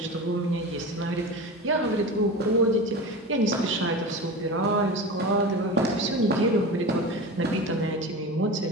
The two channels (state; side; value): normal; both; correlation 0.29